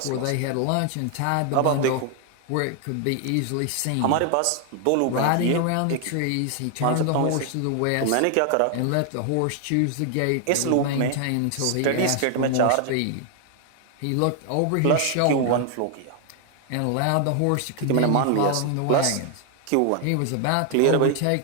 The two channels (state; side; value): different; both; correlation 0.00